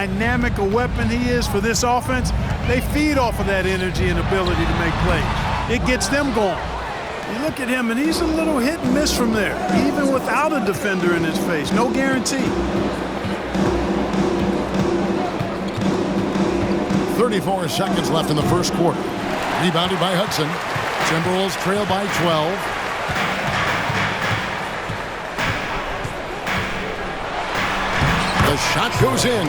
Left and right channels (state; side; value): identical; both; correlation 1.00